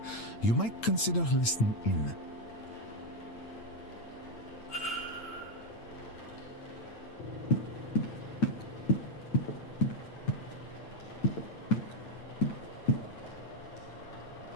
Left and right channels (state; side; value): late; right; 8.9 ms